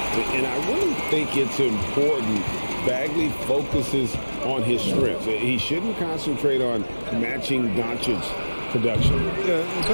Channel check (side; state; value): both; inverted; correlation -1.00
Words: And I really think it's important Bagley focuses on his strengths. He shouldn't concentrate on matching Doncic's production. Yeah,